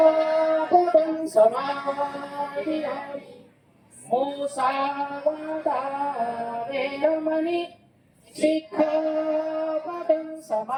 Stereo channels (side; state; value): both; identical; correlation 1.00